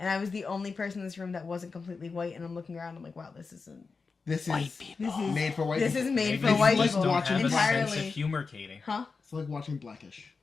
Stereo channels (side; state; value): right; quieter; 4.6 dB